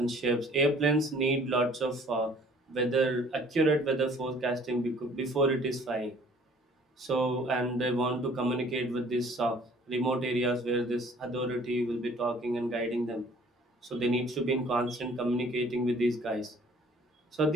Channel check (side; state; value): both; normal; correlation 0.54